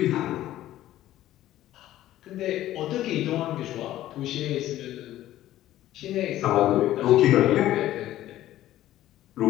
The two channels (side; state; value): right; quieter; 13.9 dB